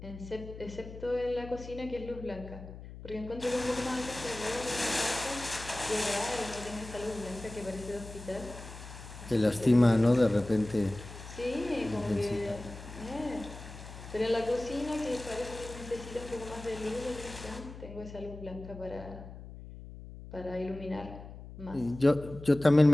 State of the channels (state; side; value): noise; left; hum, 14 dB below the sound